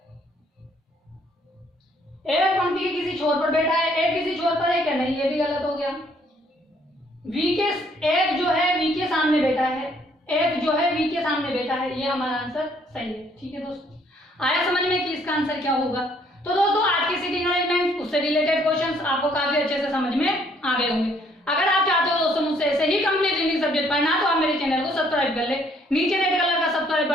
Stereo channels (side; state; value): both; normal; correlation 0.65